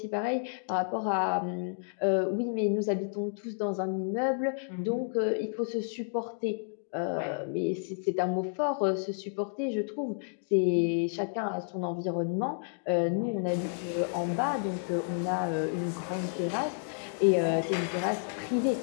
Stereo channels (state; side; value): silent; right; digital silence